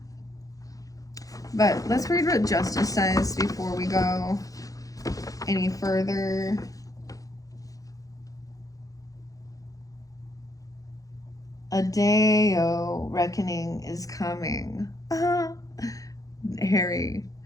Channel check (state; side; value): late; right; 0.17 ms